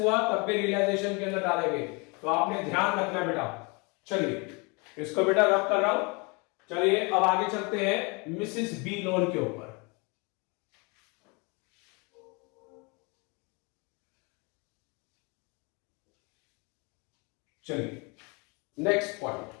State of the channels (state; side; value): quieter; right; 30.2 dB